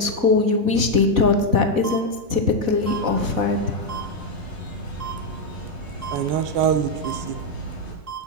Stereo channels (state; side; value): late; left; 4.1 ms